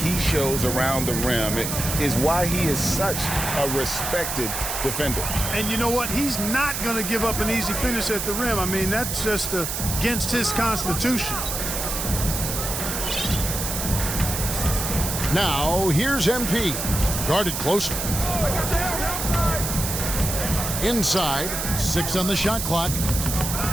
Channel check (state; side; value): noise; right; hiss, 3 dB below the sound